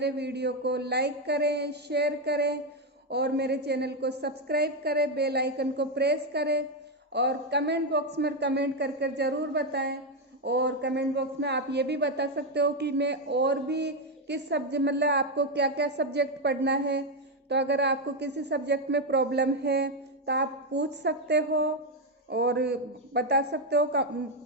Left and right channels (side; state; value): both; normal; correlation 0.05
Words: वीडियो को लाइक करें, शेयर करें और मेरे चैनल को सब्सक्राइब करें, बेल आइकन को प्रेस करें और कमेंट बॉक्स में कमेंट कर कर ज़रूर बताएं। और कमेंट बॉक्स में आप ये भी बता सकते हो कि मैं और भी किस सब्जेक्ट, मतलब आपको क्या क्या सब्जेक्ट पढ़ना है। तो अगर आपको किसी सब्जेक्ट में प्रॉब्लम है तो आप पूछ सकते हो और बता सकते हो